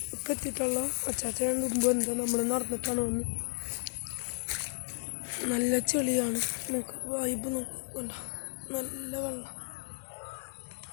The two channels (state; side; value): silent; right; digital silence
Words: എത്തിയിട്ടുള്ള. അച്ചാച്ചൻ മുമ്പ് എന്താ നമ്മൾ നടന്നിട്ടാണ് വന്ന്. നല്ല ചെളിയാണ്, നമുക്ക് വൈബ് നോക്കണ്ട, നല്ല വെള്ളം